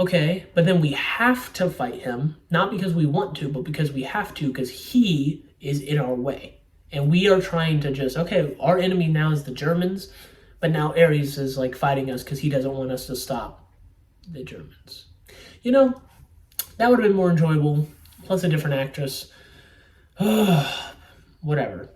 but then we have to fight him, not because we want to, but because we have to, because he is in our way. And we are trying to just, okay, our enemy now is the Germans, but now Ares is like fighting us because he doesn't want us to stop the Germans. You know, that would have been more enjoyable, plus a different actress. Whatever.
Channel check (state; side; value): identical; both; correlation 1.00